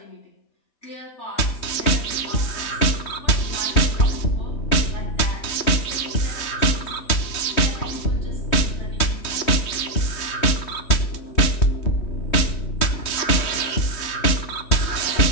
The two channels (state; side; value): late; right; 3.2 ms